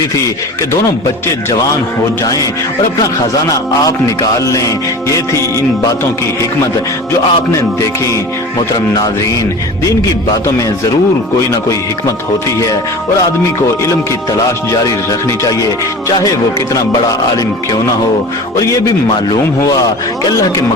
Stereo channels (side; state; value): both; normal; correlation 0.36